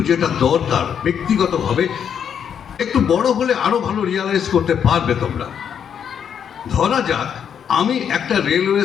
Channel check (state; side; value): quieter; right; 8.1 dB